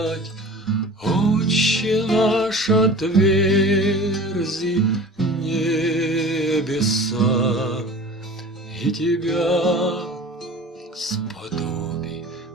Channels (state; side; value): normal; both; correlation 0.40